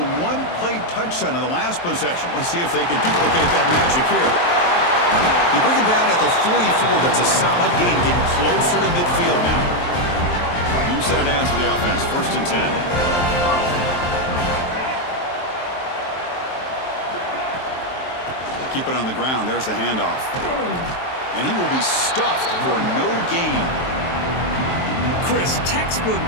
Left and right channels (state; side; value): late; right; 23 ms